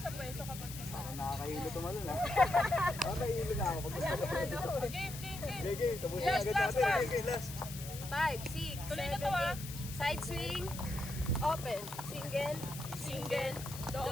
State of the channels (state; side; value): noise; left; hiss, 11 dB below the sound